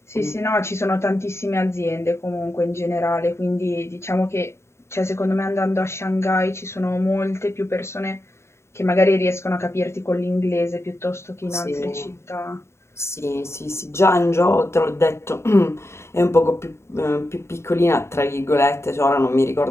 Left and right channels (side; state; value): right; late; 0.13 ms